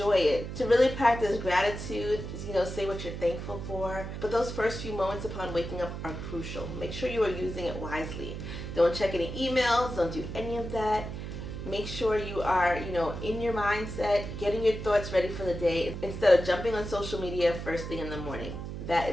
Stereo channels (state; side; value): noise; right; hum, 7 dB below the sound